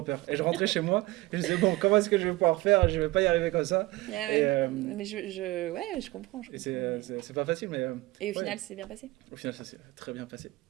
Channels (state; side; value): quieter; left; 20.2 dB